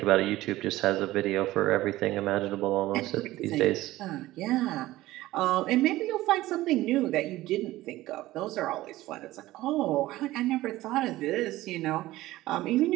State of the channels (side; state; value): left; quieter; 16.8 dB